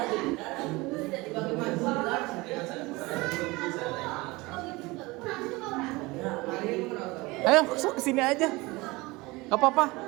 Ayo, sok kesini aja. Gak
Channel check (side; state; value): left; quieter; 22.6 dB